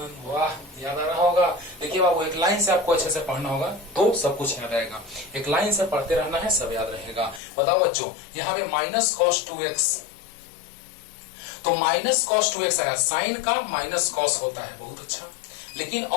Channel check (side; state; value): right; drops out; at 7.4 s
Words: वाह याद आ रहा होगा। देखिए बाबू एक लाइन से आपको अच्छे से पढ़ना होगा तो सब कुछ याद आएगा, एक लाइन से पढ़ते रहना है, सब याद रहेगा। बताओ बच्चों यहाँ पे माइनस कॉस 2x, तो माइनस कॉस 2x आया, साइन का माइनस कॉस होता है, बहुत अच्छा, लेकिन